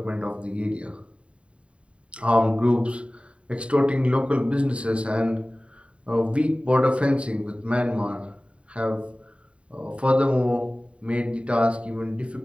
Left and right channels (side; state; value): left; late; 0.061 ms